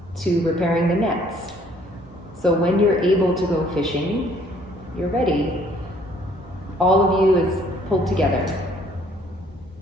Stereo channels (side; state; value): both; normal; correlation 0.61